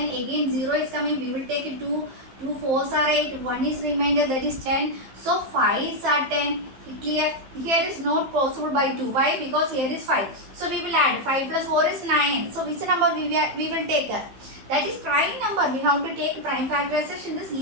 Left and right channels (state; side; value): late; left; 15 ms